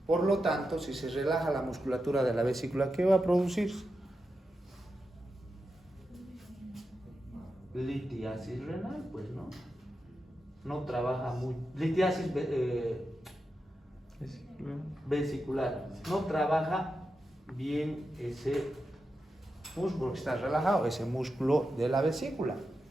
Por lo tanto, si se relaja la musculatura de la vesícula, ¿qué va a producirse? Litiasis renal, pues no. No trabaja muy. Litiasis vesicular. No trabaja bien ese músculo que está relajado, ese músculo de la vesícula.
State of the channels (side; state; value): both; normal; correlation 0.89